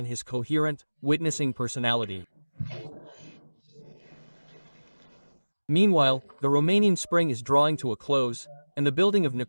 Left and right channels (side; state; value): both; inverted; correlation -1.00